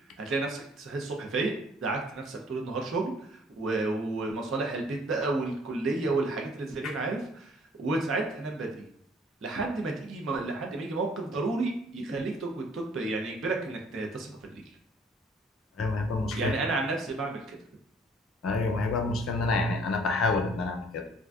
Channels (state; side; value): normal; both; correlation 0.58